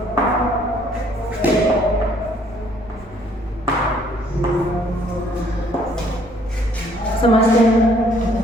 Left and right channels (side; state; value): both; normal; correlation 0.63